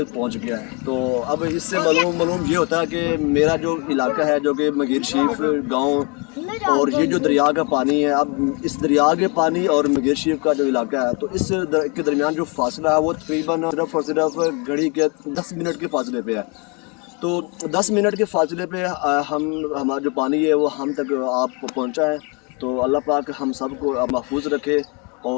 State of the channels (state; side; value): quieter; right; 31.9 dB